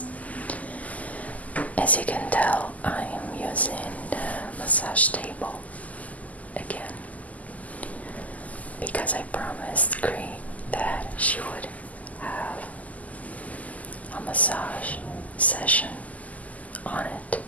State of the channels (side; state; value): right; late; 0.075 ms